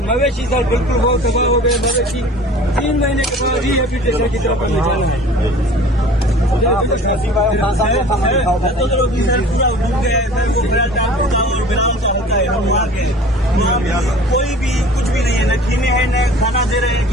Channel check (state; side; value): normal; both; correlation 0.44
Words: मवेशी सर बिल्कुल बहुत तबाह हो गए। मवेशी 3 महीने के बाद रिहेबिलिटेशन की तरफ हमें जाना है। पूरा डूब गया है सर, वो बड़ा टाप होता है और बिलाव का होता है। हम वहाँ के कोई भी कुछ भी नहीं है, न खीने हैं न खाना दे रहे हैं